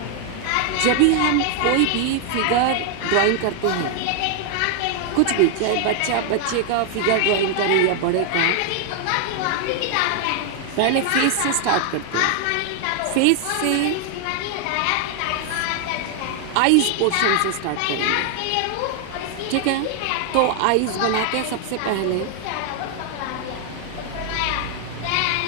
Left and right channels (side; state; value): both; different; correlation 0.00